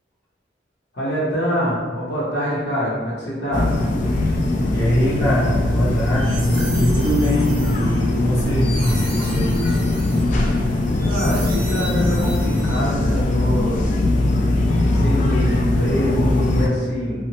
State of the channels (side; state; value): both; normal; correlation 0.80